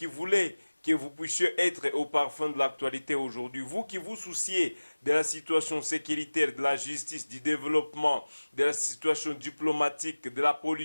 voulez que vous puissiez être au parfum de l'actualité aujourd'hui, vous qui vous souciez de la situation sécuritaire, de la justice, du développement, de la situation diplomatique, de la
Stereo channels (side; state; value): both; inverted; correlation -1.00